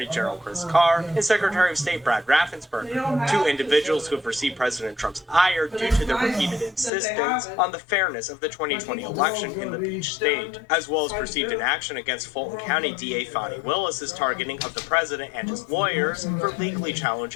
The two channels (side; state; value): right; drops out; at 6.9 s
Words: General Chris Carr and Secretary of State Brad Raffensperger, two individuals who have received President Trump's ire due to their repeated insistence on the fairness of the 2020 election in the Peach State, as well as perceived inaction against Fulton County DA Fani Willis's targeting of the president and his lawyers for legally